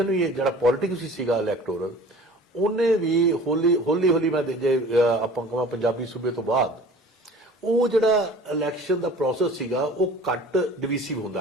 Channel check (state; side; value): normal; both; correlation 0.45